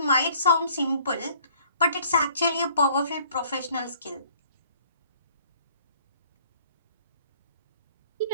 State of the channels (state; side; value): inverted; both; correlation -0.57